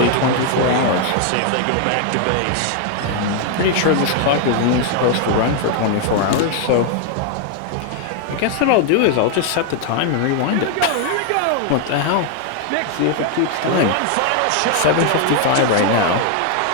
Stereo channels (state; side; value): different; both; correlation 0.00